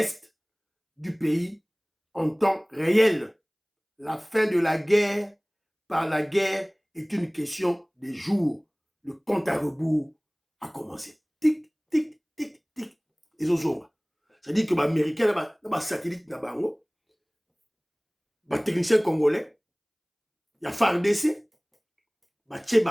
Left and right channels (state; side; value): identical; both; correlation 1.00